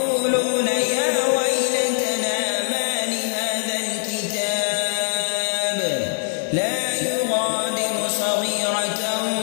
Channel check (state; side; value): silent; right; digital silence